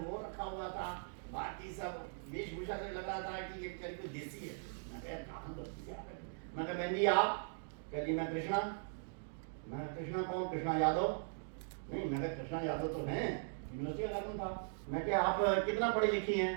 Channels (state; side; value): silent; left; digital silence